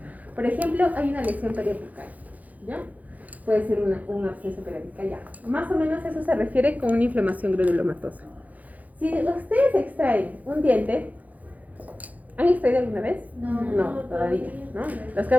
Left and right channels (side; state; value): left; late; 0.078 ms